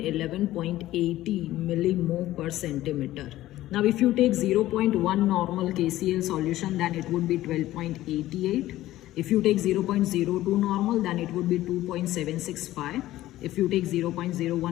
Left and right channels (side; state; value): right; quieter; 15.2 dB